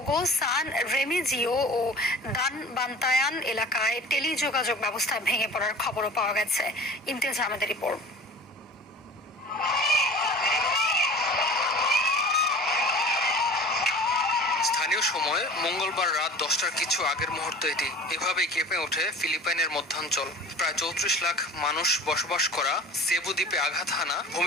সান রেমিজিও ও দানবান্তায়ান এলাকায় টেলিযোগাযোগ ব্যবস্থা ভেঙে পড়ার খবরও পাওয়া গেছে। ইমতিয়াজ আহমেদের রিপোর্ট। স্থানীয় সময় মঙ্গলবার রাত 10টার কিছু আগের মুহূর্ত এটি। এভাবেই কেঁপে ওঠে ফিলিপাইনের মধ্যাঞ্চল। প্রায় 34 লাখ মানুষ বসবাস করা সেবু দ্বীপে আঘাত হানা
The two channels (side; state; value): both; normal; correlation 0.41